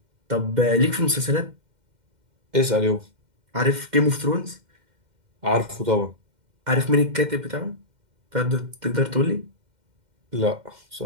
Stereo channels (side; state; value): left; late; 2.1 ms